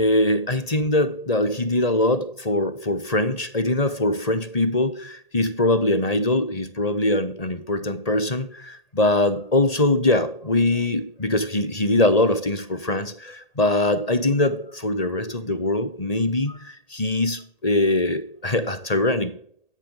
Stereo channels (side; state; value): right; late; 1.8 ms